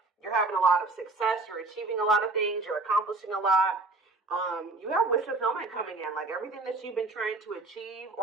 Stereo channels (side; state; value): left; quieter; 3.3 dB